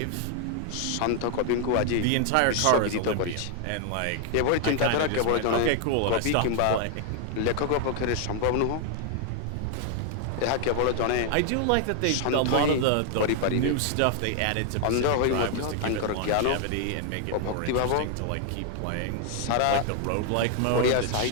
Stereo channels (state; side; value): different; both; correlation 0.00